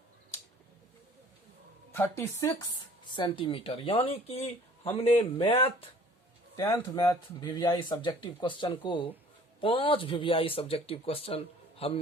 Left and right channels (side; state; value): both; normal; correlation 0.51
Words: 36 सेंटीमीटर। यानी कि हमने 10th math VVI subjective question को 5 VVI सब्जेक्टिव क्वेश्चन